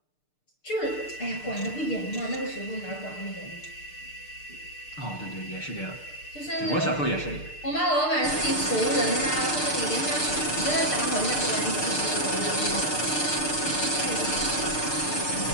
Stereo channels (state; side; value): late; right; 6.6 ms